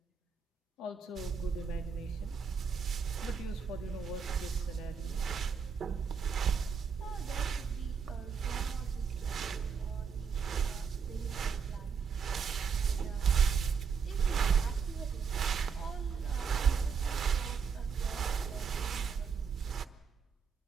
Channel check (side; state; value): left; quieter; 6.2 dB